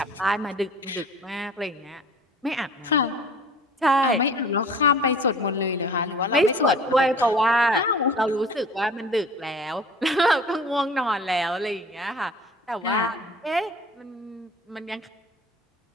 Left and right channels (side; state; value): both; normal; correlation 0.45